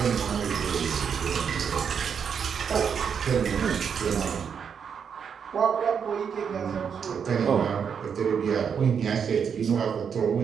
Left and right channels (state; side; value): quieter; left; 7.0 dB